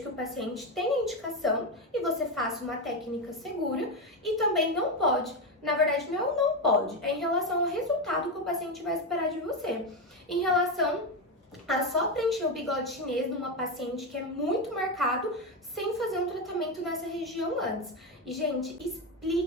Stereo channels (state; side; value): normal; both; correlation 0.11